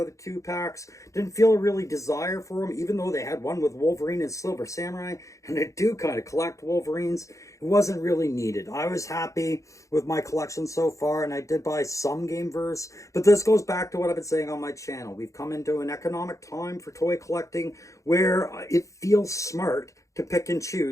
2-packs. Didn't feel a really desire for them, even though they had one with Wolverine and Silver Samurai. And I do kind of collect Wolverines. It wasn't really needed. I was happy with my collection so far, and I did buy some Gameverse. But this goes back to what I've been saying on my channel. We've come into an economic time for toy collecting where it feels smart to pick and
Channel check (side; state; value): right; late; 0.15 ms